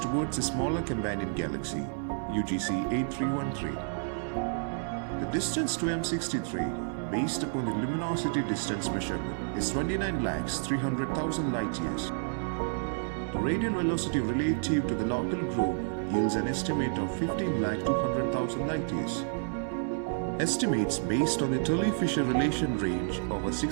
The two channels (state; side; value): silent; left; digital silence